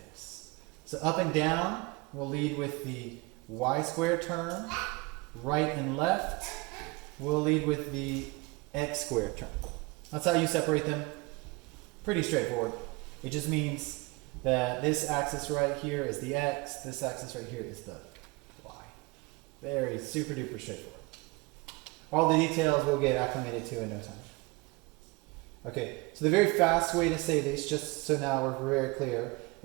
So up and down will lead with the y squared term. Right and left will lead with the x squared term. That's how you separate them. Pretty straightforward. It just means that this axis right here is the x, this axis right here is the y. Very super duper straightforward. All the details we'll get acclimated to in no time. Okay, so the very fast way to say this, just so now we're very clear,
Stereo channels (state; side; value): quieter; left; 25.3 dB